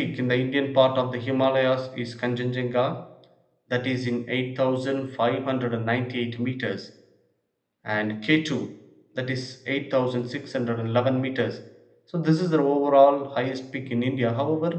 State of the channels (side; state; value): both; identical; correlation 1.00